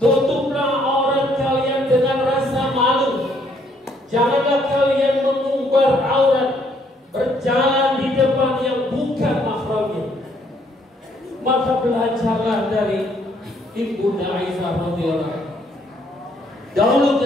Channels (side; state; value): both; normal; correlation 0.67